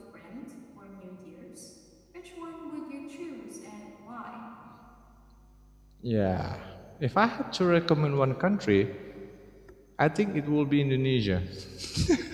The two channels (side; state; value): both; identical; correlation 1.00